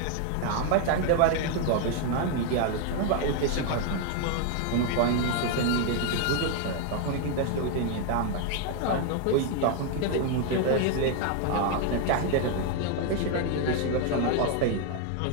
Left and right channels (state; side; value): different; both; correlation 0.00